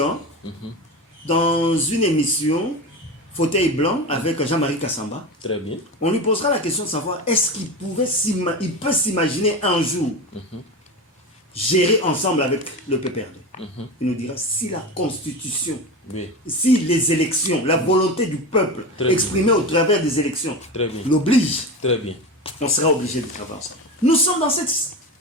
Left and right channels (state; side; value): normal; both; correlation 0.24